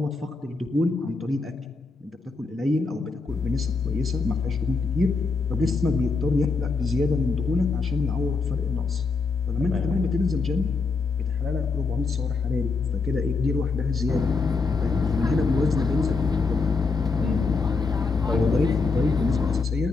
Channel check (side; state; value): right; quieter; 4.2 dB